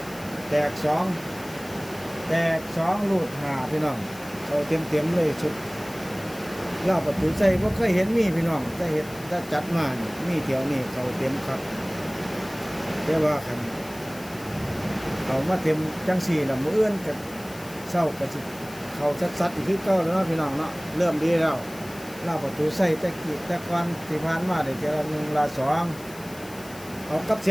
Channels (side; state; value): left; noise; hiss, 18 dB below the sound